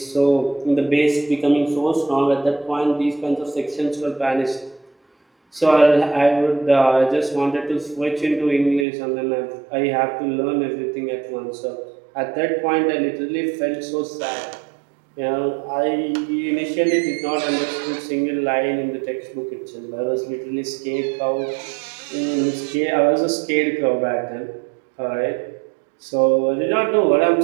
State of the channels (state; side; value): drops out; left; at 8.8 s